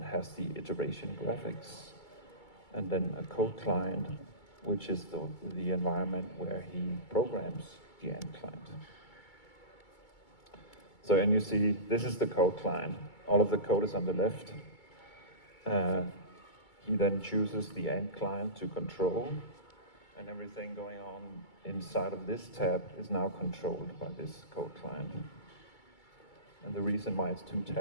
the iteration graphics, and then a code client, which is the environment where he programs the ant client. So, and you see, this is the code client. All of the code is on the left. He then chooses the ant client to control, and everything going on inside of this tab is now controlled by this code client. And the reason why it's 2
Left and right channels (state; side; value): late; right; 2.3 ms